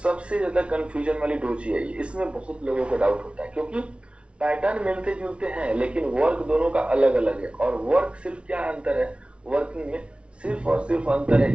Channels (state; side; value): late; left; 0.059 ms